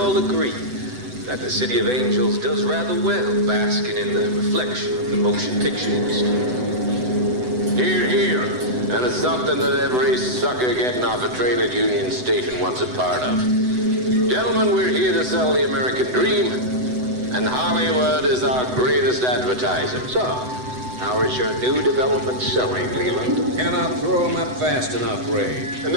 agree that the City of Angels does rather well basking in the reflection of the motion picture industry. Hear, hear. And it's something that every sucker getting off a train at Union Station wants a part of. Gentlemen, we're here to sell the American dream, and Hollywood is our greatest advertiser. So, how is your new development selling, Leland? Cannot throw them up fast enough, Ray. And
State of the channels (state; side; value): late; left; 7.9 ms